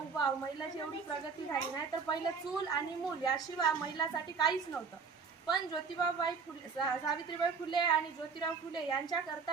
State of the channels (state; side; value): quieter; left; 5.3 dB